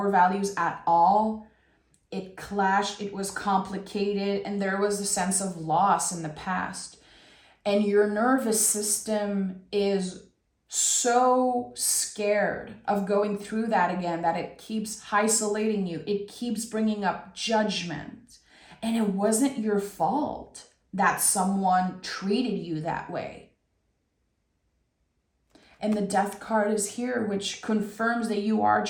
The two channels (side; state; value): both; identical; correlation 1.00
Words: values at all. It clashed, it was complicated, and there was a sense of loss in the past. And your nervous system is so scared of going through that again that it keeps isolating you. It keeps bringing up judgment. And it wasn't your fault that someone treated you that way. And the Death card is here, which confirms that you are